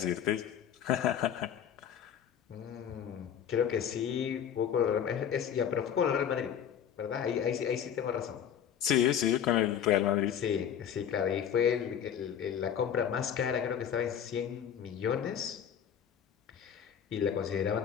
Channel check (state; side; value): quieter; right; 8.9 dB